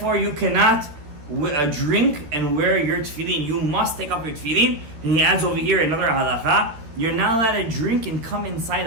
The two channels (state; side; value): late; left; 13 ms